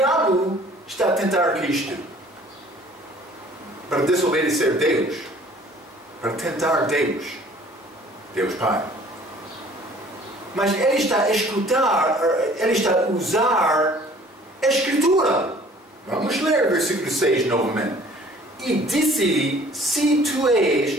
está a tentar Cristo para desobedecer Deus, para tentar Deus, Deus Pai. Mas ele está a escutar, ele está a usar a Escritura. Vamos ler versículo 6 novamente. E disse-lhe, se tu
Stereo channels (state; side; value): normal; both; correlation 0.53